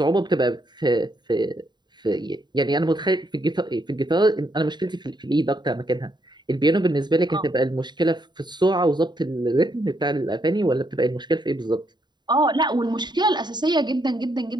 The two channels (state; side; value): late; left; 0.21 ms